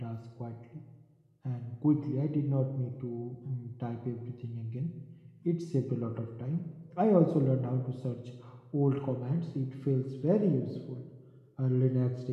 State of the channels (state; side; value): identical; both; correlation 1.00